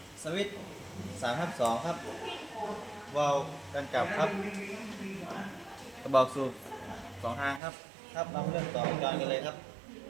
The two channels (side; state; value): left; drops out; at 7.6 s